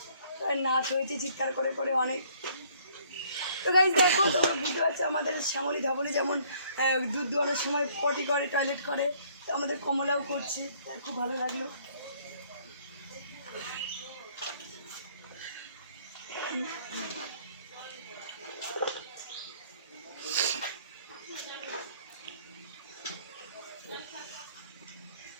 নাচ হয়েছে চিৎকার করে করে অনেক। তো গাইজ দেখো, তোমরা বুঝতে পারছো আমাদের শ্যামলী ধবলি যেমন দুধ দোয়ানোর সময় পটি করে, টয়লেট করে, তো আমাদের কমলাও করছে, খুব ভালো লাগলো।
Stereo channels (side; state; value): both; inverted; correlation -0.61